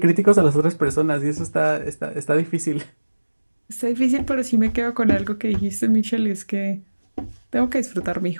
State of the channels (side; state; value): both; inverted; correlation -1.00